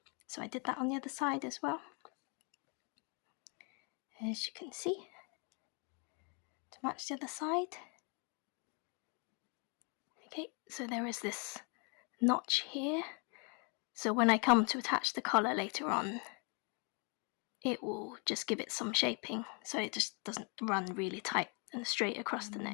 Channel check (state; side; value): quieter; right; 35.3 dB